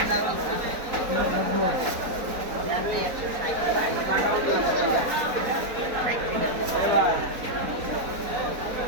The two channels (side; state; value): left; late; 4.3 ms